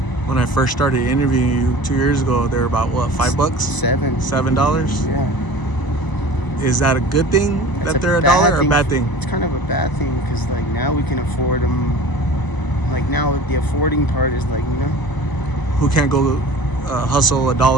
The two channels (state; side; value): late; right; 1.0 ms